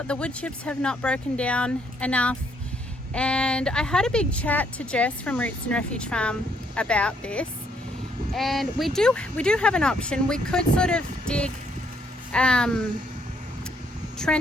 The wood chips have not broken down enough. And I had a big chat to Jess from Roots and Refuge Farm about this. And we do have an option. We could sort of dig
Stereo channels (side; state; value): both; normal; correlation 0.70